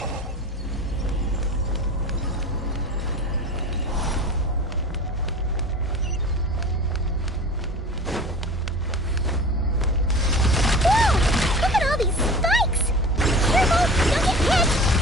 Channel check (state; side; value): normal; both; correlation 0.37